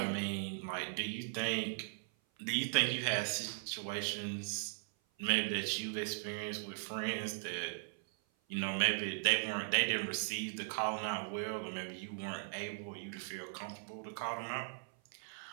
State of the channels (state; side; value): silent; left; 52 dB below the other